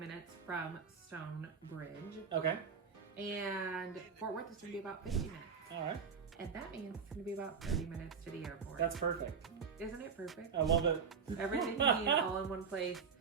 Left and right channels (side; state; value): left; quieter; 6.1 dB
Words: from Stonebridge. Okay. And Fort Worth is going to be about 50 minutes. All right. And that means it's going to be about 30 minutes to the airport. That's perfect. Isn't it perfect? I love it. Everything you need all in one place,